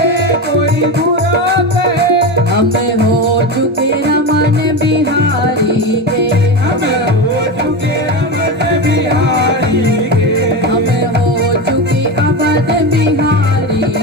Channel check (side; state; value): both; normal; correlation 0.19